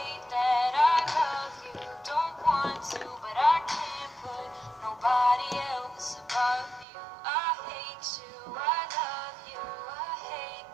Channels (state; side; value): drops out; left; at 6.9 s